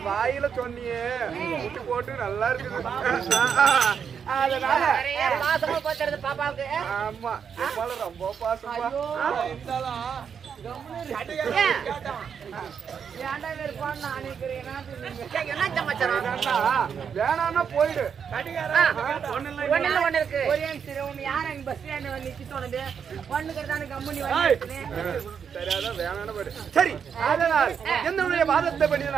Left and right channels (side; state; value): left; quieter; 7.1 dB